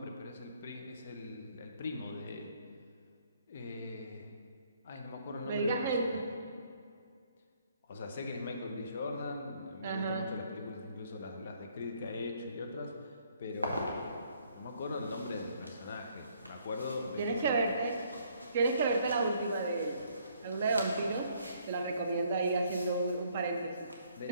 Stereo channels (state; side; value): inverted; both; correlation -0.66